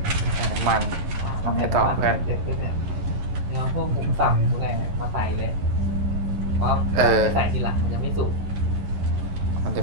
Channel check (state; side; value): late; left; 11 ms